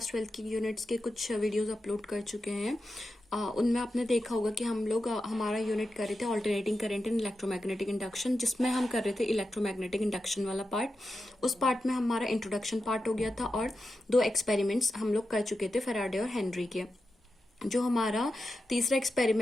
12 की यूनिट्स के कुछ वीडियोस अपलोड कर चुके हैं। उनमें आपने देखा होगा कि हम लोग हमारा यूनिट कर रहे थे alternating current in electromagnetic induction, जिसमें हम कर रहे थे इलेक्ट्रोमैग्नेटिक इंडक्शन वाला पार्ट। उस पार्ट में हमारा इंट्रोडक्शन पार्ट हो गया था और दो एक्सपेरिमेंट्स हम लोग कर चुके थे फैराडे और हेनरी के। जो हमारा तीसरा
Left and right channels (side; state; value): both; normal; correlation 0.90